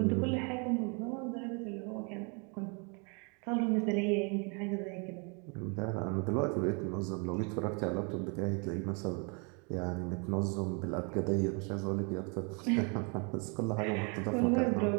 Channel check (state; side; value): quieter; left; 34.3 dB